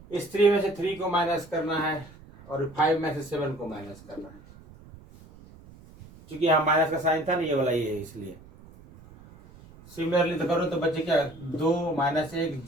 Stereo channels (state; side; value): noise; right; rumble, 21 dB below the sound